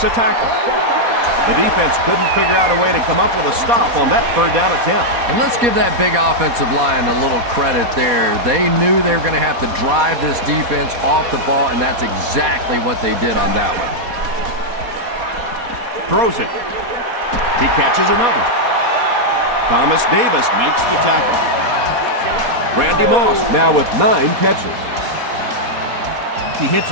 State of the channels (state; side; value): late; left; 4.2 ms